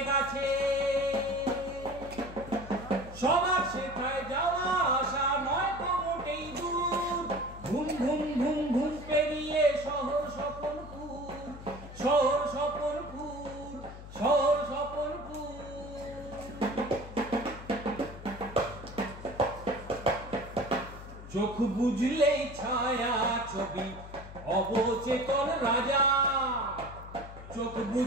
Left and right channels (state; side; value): noise; left; hum, 14 dB below the sound